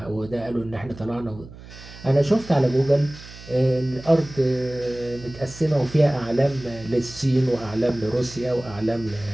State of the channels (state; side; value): noise; right; hum, 17 dB below the sound